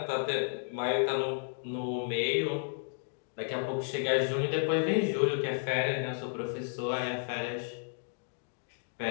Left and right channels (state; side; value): silent; right; digital silence